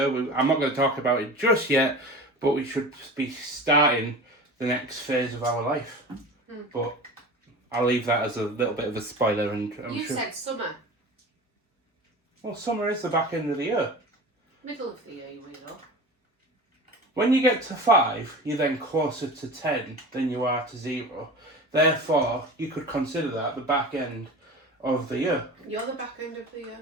I'm not going to talk about it just yet, but we should be starting the next phase of our life. But I'll leave that as a little bit of a spoiler. And You said summer. Well, summer is the back end of the year. Middle of the year, you weirdo. When you get to 5, you're then closer to 10 than you are to 0. Therefore, you could consider that the back end of the year. You're the back end of the year.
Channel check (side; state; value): both; normal; correlation 0.34